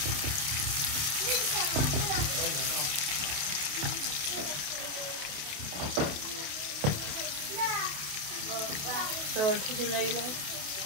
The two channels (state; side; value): late; left; 28 ms